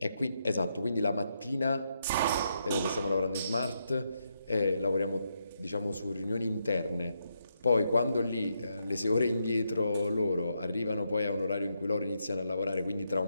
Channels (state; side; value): inverted; both; correlation -0.81